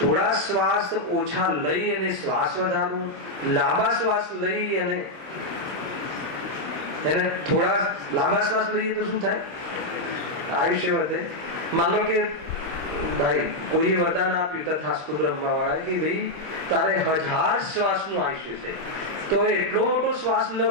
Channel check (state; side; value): late; left; 25 ms